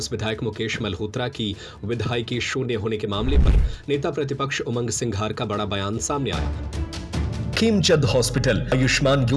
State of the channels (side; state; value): both; identical; correlation 1.00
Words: विधायक मुकेश मल्होत्रा की विधायकी शून्य होने के मामले पर नेता प्रतिपक्ष उमंग सिंघार का बड़ा बयान सामने आया। खेमचंद हॉस्पिटल आयुष्मान